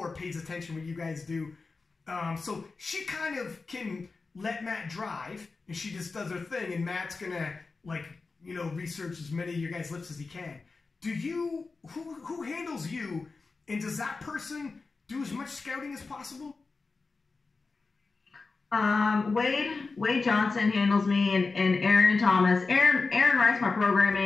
pays attention what you guys do. So she kind of can let Matt drive, and she just does her thing, and Matt's gonna like, research as many of your guys' lifts as he can. Do you, who handles you, and does that person do as much scouting as possible? Wade Johnson handles me, and Aaron Thomas. Aaron writes my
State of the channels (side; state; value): right; quieter; 4.1 dB